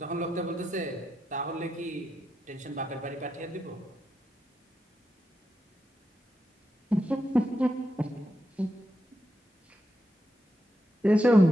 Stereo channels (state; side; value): normal; both; correlation 0.85